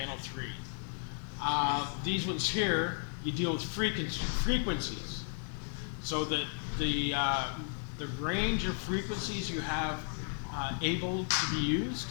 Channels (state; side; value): silent; right; 55 dB below the other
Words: 3. These ones here, you deal with frequencies. So that the range of frequencies you have able to be used